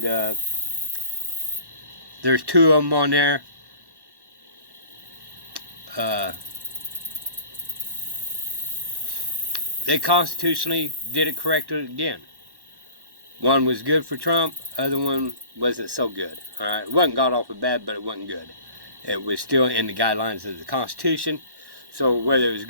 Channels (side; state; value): left; late; 1.1 ms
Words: there's two of them on there. They constitutionally did it correctly again. One was good for Trump, other one wasn't so good. All right, it wasn't god awful bad, but it wasn't good. It was still in the guidelines of the Constitution, so whether it was